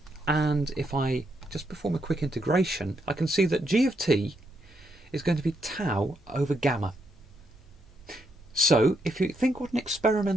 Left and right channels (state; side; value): normal; both; correlation 0.78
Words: and if I just perform a quick integration, I can see that G of t is going to be tau over gamma. So, if you think what an